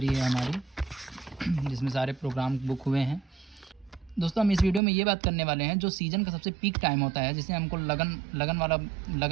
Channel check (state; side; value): drops out; left; at 4.8 s